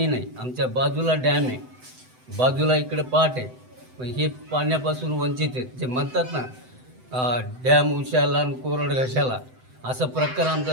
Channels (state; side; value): late; left; 7.9 ms